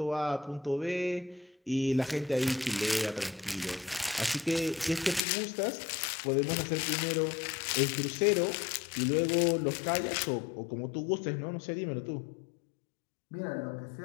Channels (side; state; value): right; drops out; at 5.2 s